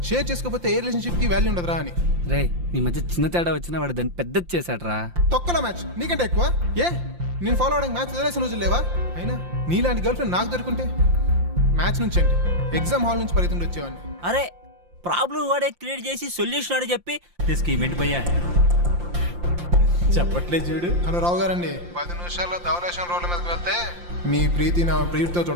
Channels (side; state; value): left; late; 5.7 ms